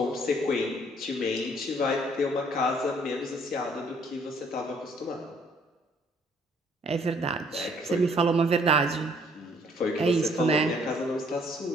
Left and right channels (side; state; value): both; normal; correlation 0.63